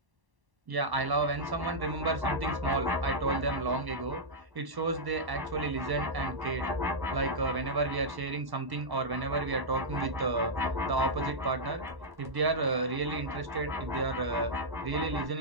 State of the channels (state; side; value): late; left; 1.1 ms